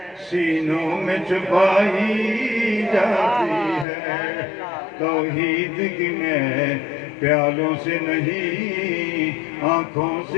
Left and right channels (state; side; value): drops out; right; at 3.9 s